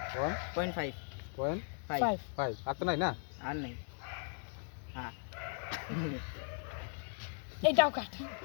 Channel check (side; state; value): right; silent; 53 dB below the other